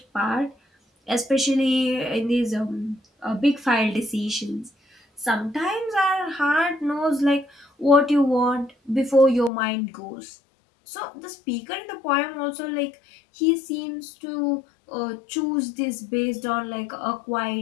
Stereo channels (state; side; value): drops out; right; at 9.5 s